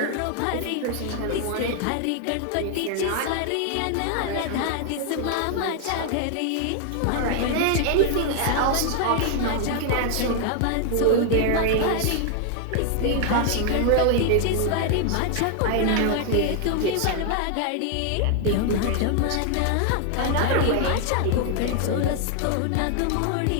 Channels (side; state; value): both; different; correlation 0.00